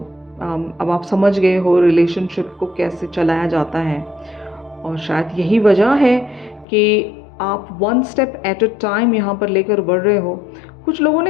अब आप समझ गए हो रिलेशनशिप को कैसे चलाया जाता है। और शायद यही वजह है कि आप one step at a time यहाँ पर लेकर बढ़ रहे हो। कुछ लोगों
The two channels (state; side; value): drops out; right; at 6.7 s